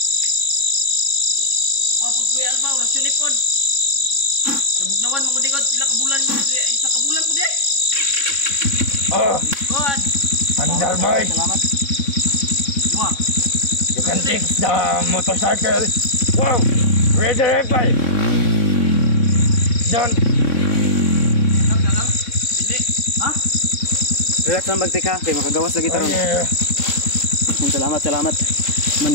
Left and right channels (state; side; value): late; right; 3.6 ms